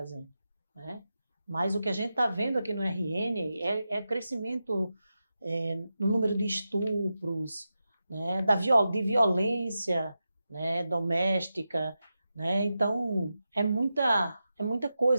né? Mas o que a gente está vendo aqui no RN é crescimento no número de estupros, né, de violência, né, doméstica, né? Então, é muita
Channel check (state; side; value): inverted; both; correlation -0.90